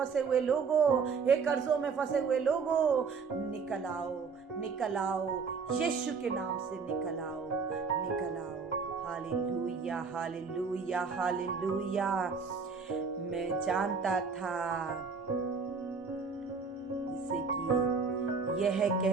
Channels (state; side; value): quieter; left; 5.2 dB